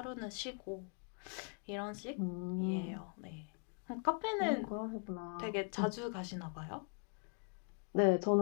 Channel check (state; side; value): quieter; right; 36.9 dB